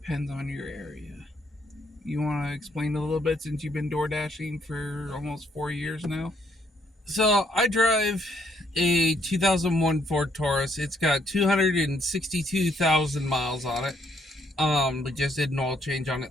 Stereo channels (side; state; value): both; normal; correlation 0.70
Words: on your area. You want to explain a little bit since you've been door dashing for almost 4 years now? So I drive a 2001 Ford Taurus. It's got 262,000 miles on it. We just did an oil change on